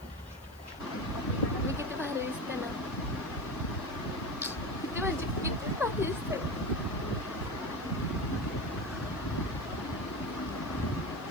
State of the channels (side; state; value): left; noise; hiss, 25 dB below the sound